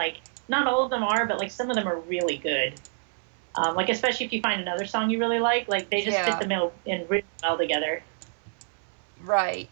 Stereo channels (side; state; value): left; silent; 60 dB below the other